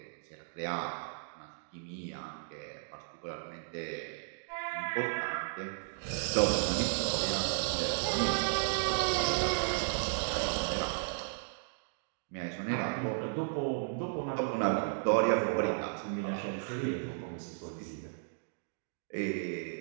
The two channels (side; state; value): left; silent; digital silence